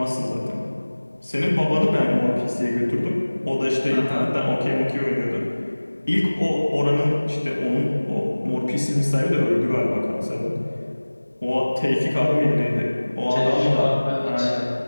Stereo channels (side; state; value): both; inverted; correlation -1.00